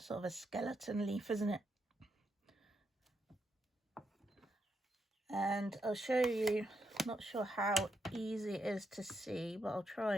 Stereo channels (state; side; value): normal; both; correlation 0.81